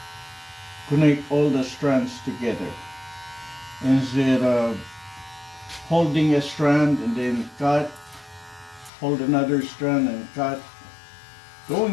connect all the strands together, instead of holding a strand and then cut, hold another strand and cut,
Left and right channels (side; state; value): right; drops out; at 8.9 s